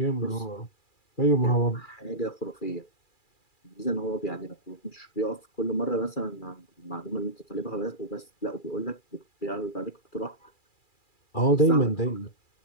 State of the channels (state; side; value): late; right; 2.4 ms